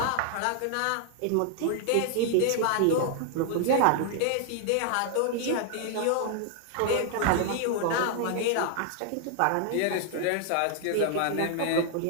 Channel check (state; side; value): different; both; correlation 0.00